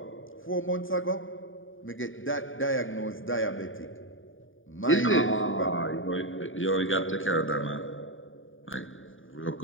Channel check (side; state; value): right; late; 0.58 ms